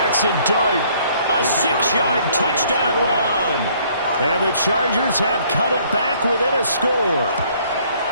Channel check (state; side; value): inverted; both; correlation -0.61